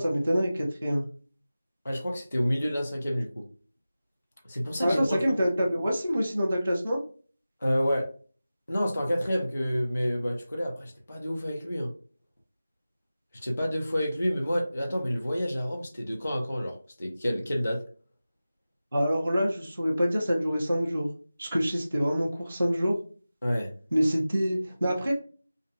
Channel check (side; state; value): both; inverted; correlation -0.96